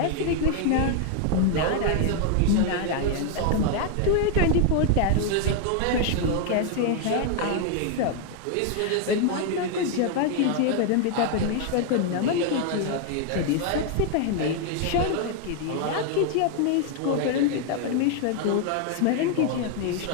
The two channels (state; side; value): different; both; correlation 0.00